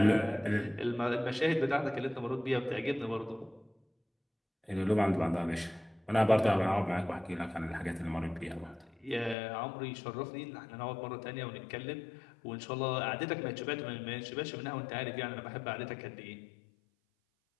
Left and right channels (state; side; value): drops out; right; at 9.3 s